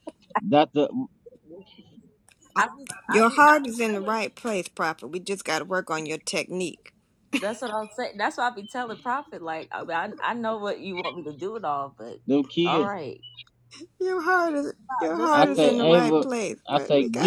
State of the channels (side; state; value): both; identical; correlation 1.00